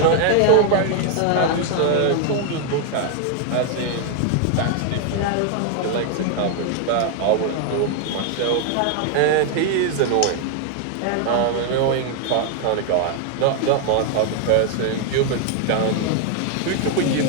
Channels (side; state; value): both; different; correlation 0.00